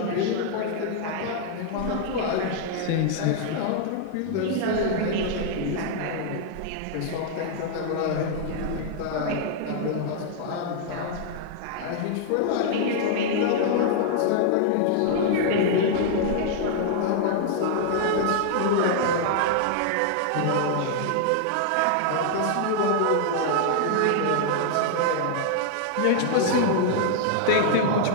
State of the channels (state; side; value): different; both; correlation -0.01